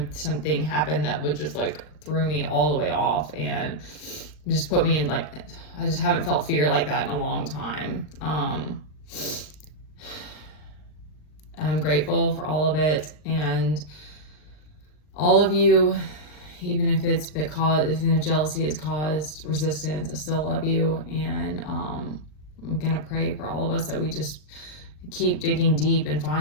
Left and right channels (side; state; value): right; late; 39 ms